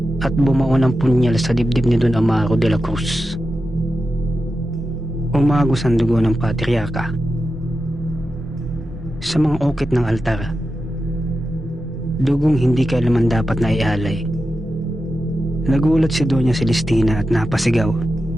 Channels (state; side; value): normal; both; correlation 0.91